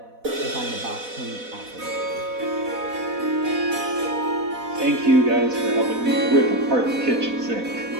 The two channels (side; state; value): left; late; 4.1 ms